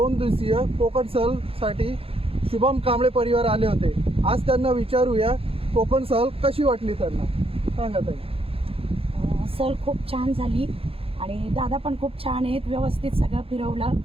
दिवसीय कोकण सहलसाठी शुभम कांबळे परिवार आले होते। आज त्यांना विचारूया कोकण सहल कशी वाटली त्यांना, सांगा ताई। सहल खूप छान झाली आणि दादा पण खूप छान आहेत, व्यवस्थित सगळं फिरवलं,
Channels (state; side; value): late; left; 0.27 ms